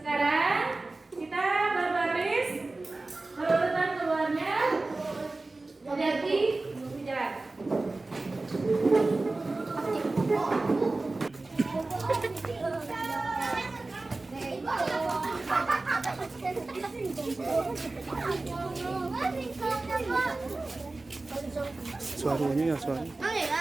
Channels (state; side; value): quieter; left; 3.2 dB